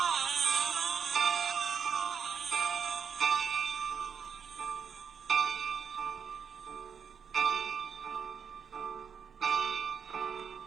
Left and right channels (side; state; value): left; quieter; 6.8 dB